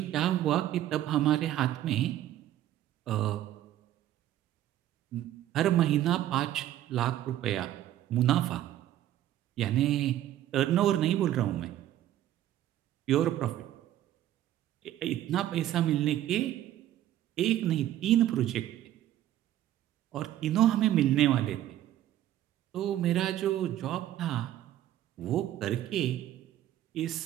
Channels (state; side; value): quieter; left; 12.7 dB